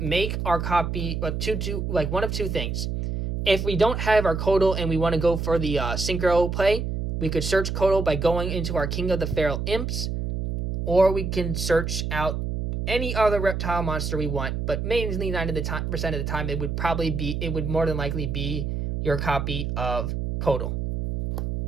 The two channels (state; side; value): noise; right; hum, 2 dB below the sound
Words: our copy one of 2 things. If we don't have our Kodal and we want to go for the Synchro play, we could search Kodal by going into our King of the Feral Imps, or we can search out any other reptile monster we want, but mainly 90% of the time it would more than likely be your copy of Kodal.